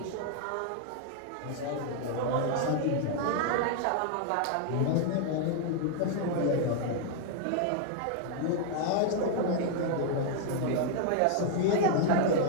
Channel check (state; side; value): different; both; correlation 0.00